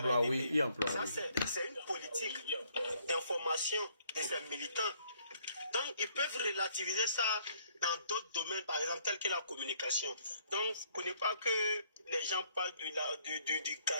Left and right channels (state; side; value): inverted; both; correlation -0.65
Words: oui, e-emploi. Ça, Oui. c'est une politique d'information de ces militants. Donc, ils peuvent relativiser ça dans d'autres domaines, par exemple, tels que la communication. Donc, vous ne connaissez pas que les gens parlent du